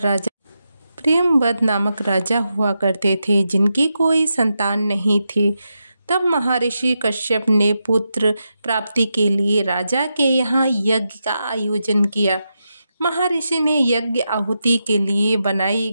प्रेमवद नामक राजा हुआ करते थे, जिनकी कोई संतान नहीं थी। तब महर्षि कश्यप ने पुत्र प्राप्ति के लिए राजा के यहाँ यज्ञ का आयोजन किया। महर्षि ने यज्ञ आहुति के लिए बनाई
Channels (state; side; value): inverted; both; correlation -0.87